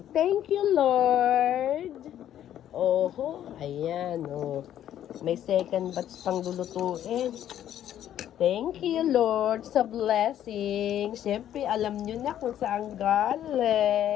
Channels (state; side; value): quieter; right; 11.1 dB